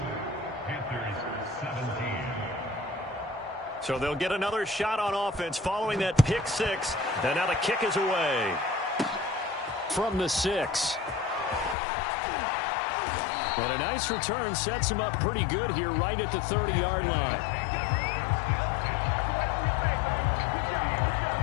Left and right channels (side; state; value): right; drops out; at 11.8 s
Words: So they'll get another shot on offense following that pick six, and now the kick is away. From the 6. And a nice return sets him up pretty good here right at the 30-yard line.